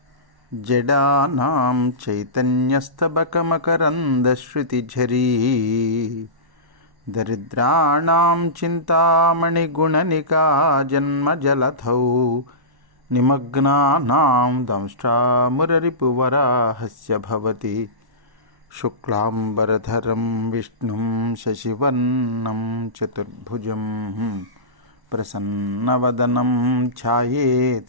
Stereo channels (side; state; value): left; late; 1.1 ms